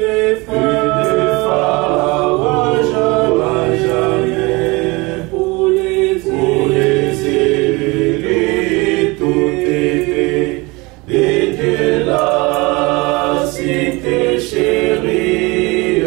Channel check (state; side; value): quieter; left; 25.0 dB